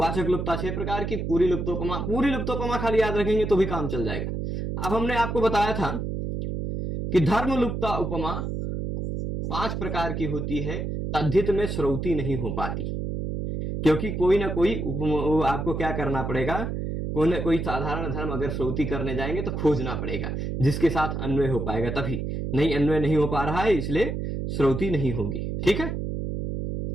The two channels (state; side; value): noise; right; hum, 3 dB below the sound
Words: लुप्तता 6 प्रकार की, पूरी लुप्तोपमा खाली याद रखेंगे तो भी काम चल जाएगा। अब हमने आपको बताया था कि धर्म लुप्तता उपमा 5 प्रकार की होती है, तद्धित में श्रौती नहीं हो पाती, क्योंकि कोई ना कोई आपको क्या करना पड़ेगा, कोई ना कोई साधारण धर्म अगर श्रौती करने जाएंगे तो खोजना पड़ेगा जिसके साथ अन्वय हो पाएगा, तभी। नहीं, अन्वय नहीं हो पा रहा है इसलिए श्रौती नहीं होगी। ठीक है,